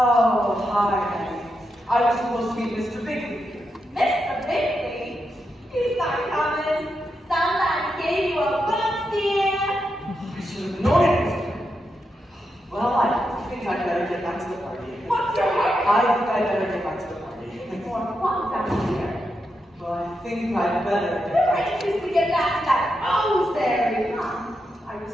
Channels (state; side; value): normal; both; correlation 0.85